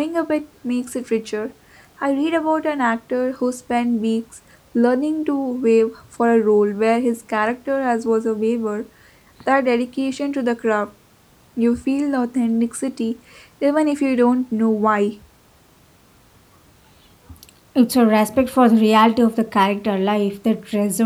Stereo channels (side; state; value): both; identical; correlation 1.00